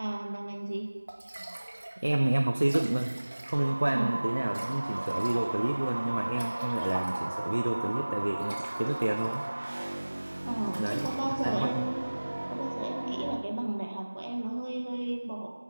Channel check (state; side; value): inverted; both; correlation -1.00